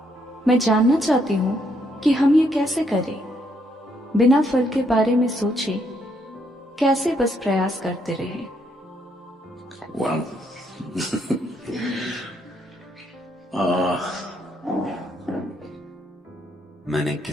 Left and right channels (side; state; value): both; normal; correlation 0.73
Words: मैं जानना चाहती हूँ कि हम ये कैसे करें, बिना फल के बारे में सोचे कैसे बस प्रयास करते रहें। Well, मैंने